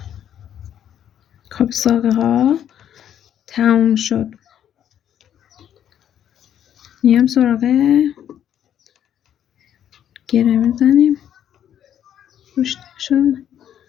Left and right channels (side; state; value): right; quieter; 10.1 dB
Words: خب ساقه ها تموم شد، میام سراغ گره میزنیم روش شد،